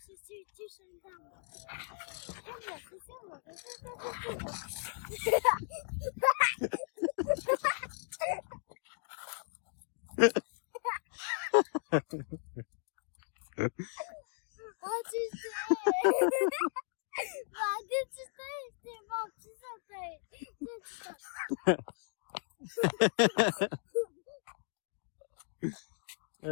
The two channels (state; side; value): silent; right; 54 dB below the other